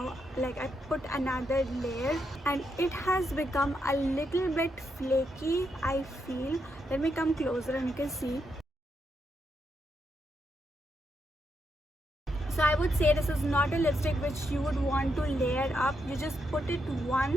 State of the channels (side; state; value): both; normal; correlation 0.81